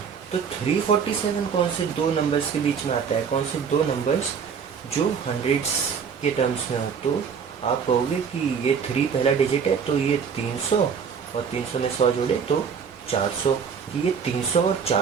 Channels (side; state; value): left; quieter; 6.6 dB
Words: तो 347 कौन से दो नंबर्स के बीच में आता है? कौन से दो नंबर्स जो हंड्रेड्स के टर्म्स में हो? तो आप कहोगे कि ये 3 पहला डिजिट है, तो ये 300, और 300 में 100 जोड़े तो 400, कि ये 300 और